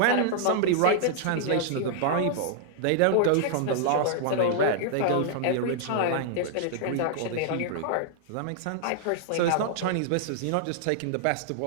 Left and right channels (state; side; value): different; both; correlation -0.01